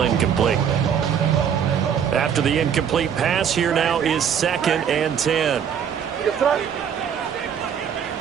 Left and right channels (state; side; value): quieter; left; 8.1 dB